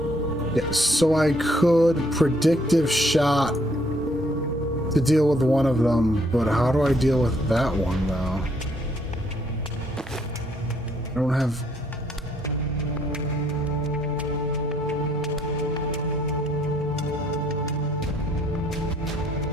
Yeah, so I could predictive shot to deal with one of them, but how do I deal with that one, though? I don't have...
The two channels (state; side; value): normal; both; correlation 0.68